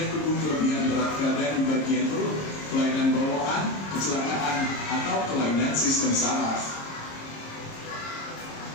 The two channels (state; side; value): late; right; 26 ms